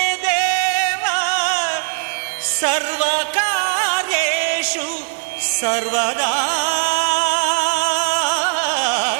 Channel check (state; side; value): silent; left; digital silence